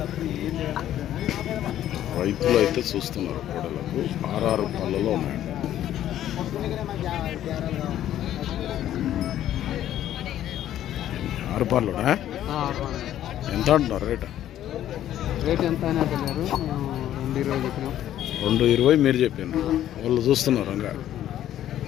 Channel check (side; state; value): right; quieter; 11.9 dB